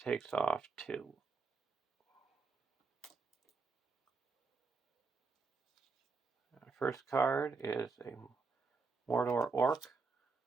off 2. Our first card is a Mordor Orc.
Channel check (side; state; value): left; quieter; 4.4 dB